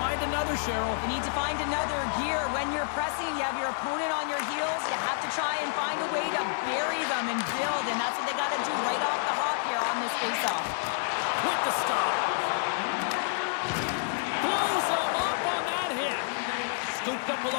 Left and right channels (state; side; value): silent; right; 59 dB below the other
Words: another, Cheryl? You need to find another gear. When you're pressing, you have your opponent on your heels. You have to try and find a way to bury them and build, and that's what they got to do right off the hop here on this faceoff. With the stop. Blows him up on that hit. Scooped up